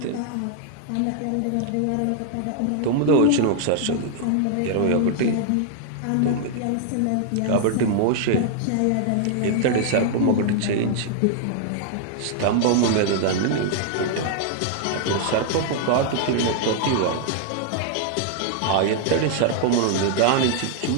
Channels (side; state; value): both; different; correlation 0.00